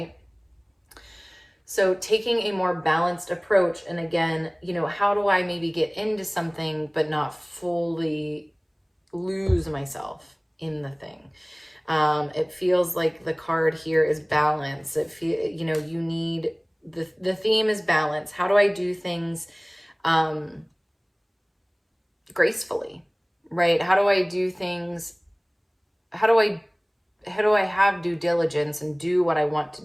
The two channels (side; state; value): both; identical; correlation 1.00